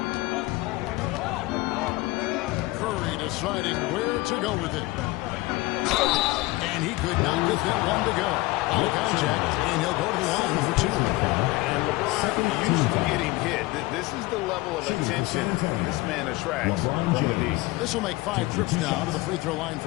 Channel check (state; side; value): quieter; right; 20.5 dB